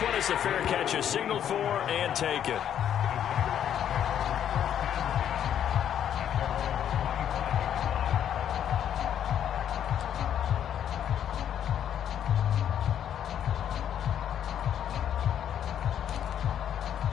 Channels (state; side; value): quieter; right; 9.7 dB